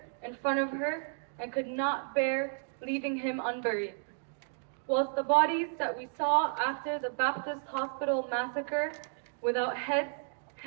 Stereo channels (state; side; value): silent; left; digital silence